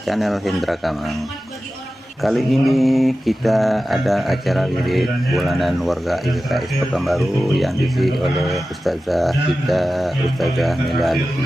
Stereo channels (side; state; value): both; normal; correlation 0.94